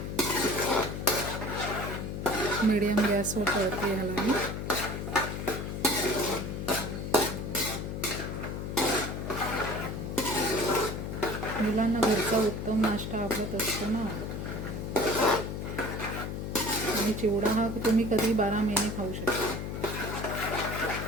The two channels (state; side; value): noise; left; hum, 5 dB below the sound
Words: मीडियम गॅसवर तळते ह्याला मी. मुलांना घरचा उत्तम नाश्ता आवडत असतो ना. आणि चिवडा हा तुम्ही कधी 12 महिने खाऊ शकता.